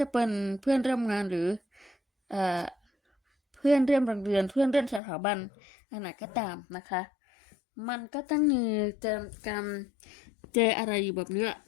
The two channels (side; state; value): right; drops out; at 5.0 s